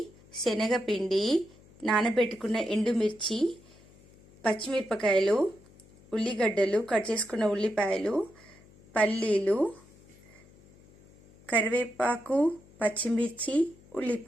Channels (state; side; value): noise; left; hum, 26 dB below the sound